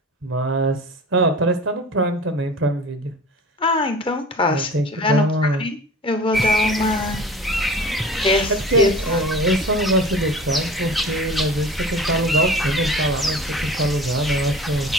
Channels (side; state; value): both; normal; correlation 0.39